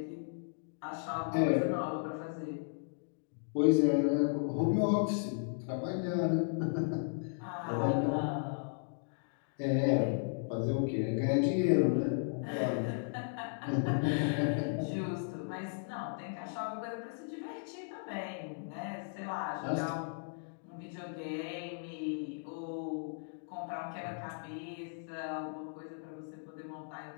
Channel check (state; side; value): silent; right; digital silence